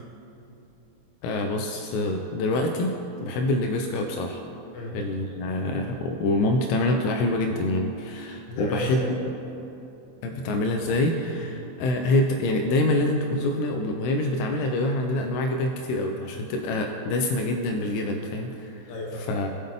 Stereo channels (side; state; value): right; late; 23 ms